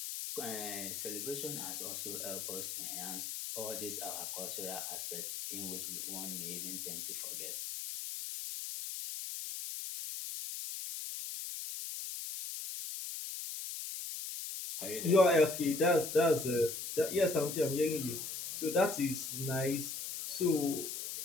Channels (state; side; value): noise; left; hiss, 5 dB below the sound